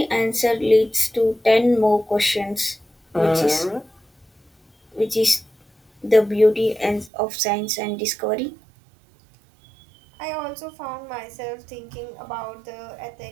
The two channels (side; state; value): left; drops out; at 7.1 s